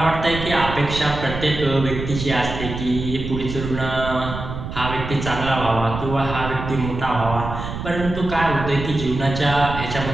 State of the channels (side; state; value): right; noise; rumble, 7 dB below the sound